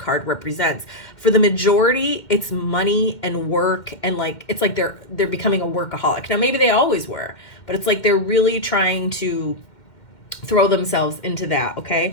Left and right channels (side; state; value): right; late; 2.2 ms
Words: represents. For the majority, it's money and work, and it's like they're becoming a workaholic. Now, maybe they always were, but it's like they're really trying to throw themselves into that, okay?